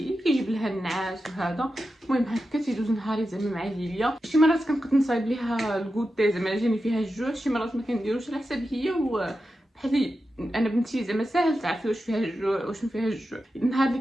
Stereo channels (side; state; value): both; normal; correlation 0.91